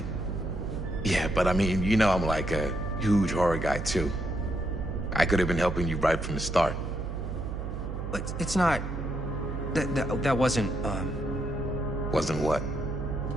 Yeah, but I mean, you know I'm like a huge horror guy, too. I could have been helping you right from the start. But it's not... That wasn't, Wasn't what?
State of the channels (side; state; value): right; noise; hum, 5 dB below the sound